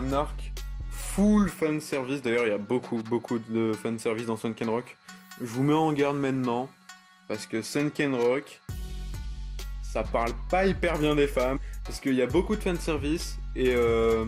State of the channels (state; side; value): identical; both; correlation 1.00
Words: arc full fan service. D'ailleurs, il y a beaucoup de fan service dans Sunken Rock. Je vous mets en garde maintenant, parce que Sunken Rock, ça parle pas hyper bien des femmes, parce qu'il y a beaucoup de fan service et